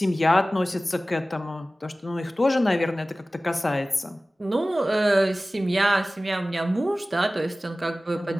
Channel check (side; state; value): both; normal; correlation 0.97